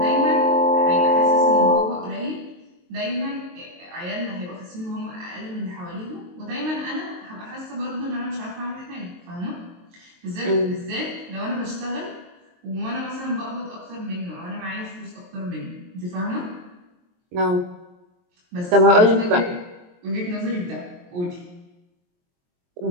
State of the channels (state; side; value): late; left; 23 ms